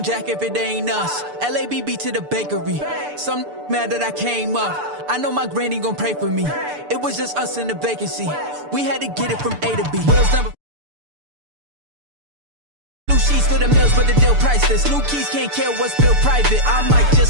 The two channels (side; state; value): left; late; 6.8 ms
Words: jack if it ain't us? LABB to the bakery. Some mad that I came up. I know my granny gon' pray for me. It was just us in the vacancy. We had to get it from A to B. Wheels number. New sheets for the mills, but the deal priceless. New keys can't care what's still private. I might